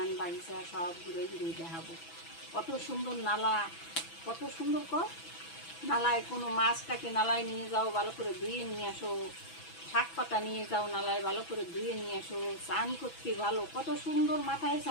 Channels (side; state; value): right; late; 6.0 ms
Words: বাগিচা সব ঘুরে ঘুরে দেখাবো। কত সুন্দর নালা, কত সুন্দর নালায় কোনো মাছটাকে নালায় নিয়ে যাও, ভালো করে ধুয়ে নিয়ে আসো, শাক পাতা নিয়ে যাও নালায়, ভালো করে ধুয়ে নিয়ে আসো, চান করতে ভালো, কত সুন্দর মাথায়